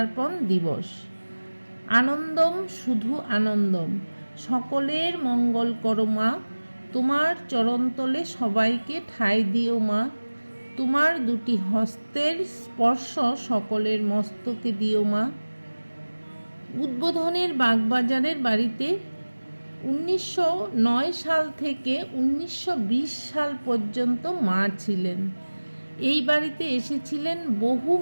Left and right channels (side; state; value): both; inverted; correlation -1.00